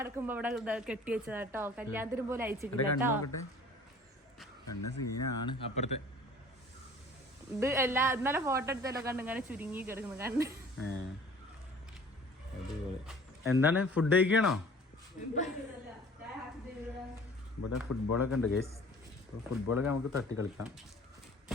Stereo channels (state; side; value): normal; both; correlation 0.49